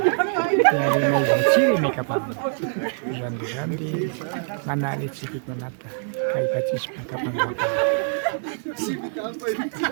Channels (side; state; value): left; silent; digital silence